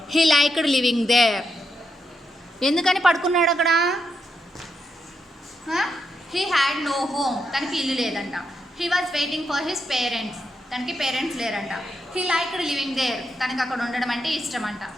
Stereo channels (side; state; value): both; normal; correlation 0.82